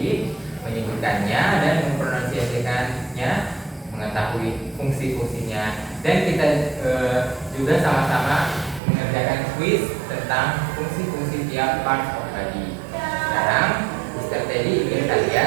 menyebutkannya dan mempronunciasikannya, mengetahui fungsi-fungsinya, dan kita juga sama-sama mengerjakan quiz tentang fungsi-fungsi tiap part of body. Sekarang Mr. Teddy ingin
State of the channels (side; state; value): left; drops out; at 8.8 s